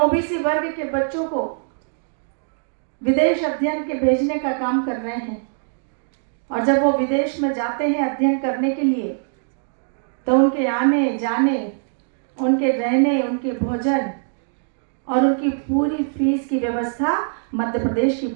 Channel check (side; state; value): left; silent; digital silence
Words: वर्ग के बच्चों को विदेश अध्ययन के भेजने का काम कर रहे हैं। और जब वो विदेश में जाते हैं अध्ययन करने के लिए, तो उनके आने जाने, उनके रहने, उनके भोजन और उनकी पूरी फीस की व्यवस्था मध्य प्रदेश की